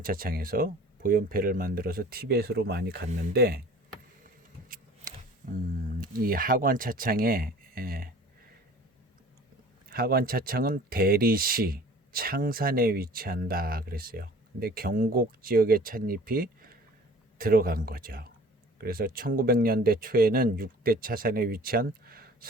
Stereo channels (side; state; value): both; normal; correlation 0.47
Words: 보연패를 만들어서 티베트로 많이 갔는데, 이 하관차창은 대리시 창산에 위치한다 그랬어요. 근데 경곡 지역의 찻잎이 들어간 거죠. 그래서 1900년대 초에는 6대 차산에 위치한